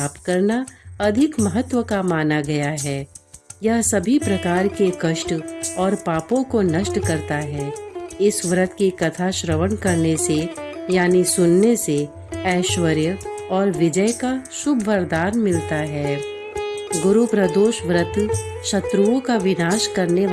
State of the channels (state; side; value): identical; both; correlation 1.00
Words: करना अधिक महत्व का माना गया है। यह सभी प्रकार के कष्ट और पापों को नष्ट करता है। इस व्रत की कथा श्रवण करने से यानी सुनने से ऐश्वर्य और विजय का शुभ वरदान मिलता है। गुरु प्रदोष व्रत शत्रुओं का विनाश करने